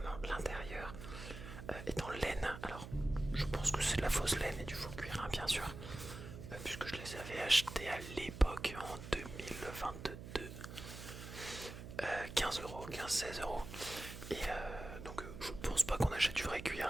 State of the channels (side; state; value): right; noise; hum, 11 dB below the sound